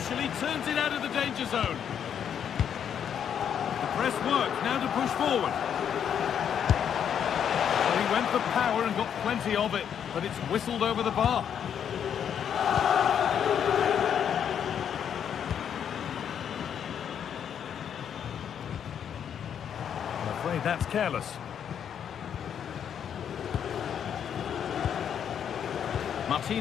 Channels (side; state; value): right; quieter; 8.5 dB